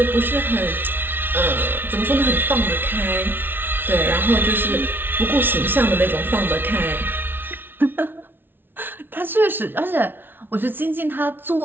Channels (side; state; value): left; late; 0.10 ms